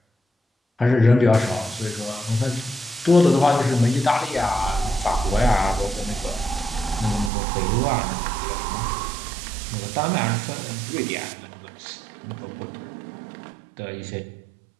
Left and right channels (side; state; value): left; drops out; at 7.3 s